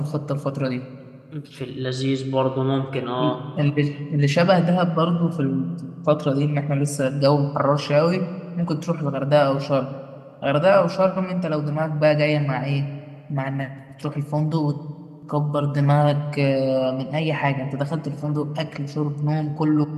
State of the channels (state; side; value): identical; both; correlation 1.00